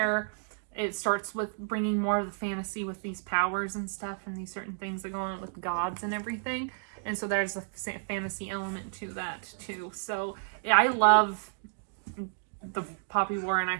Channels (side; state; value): left; silent; digital silence